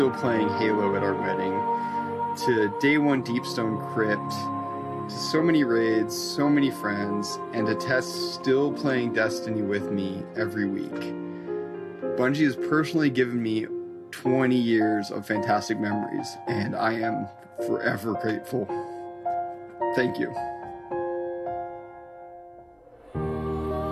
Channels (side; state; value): both; identical; correlation 1.00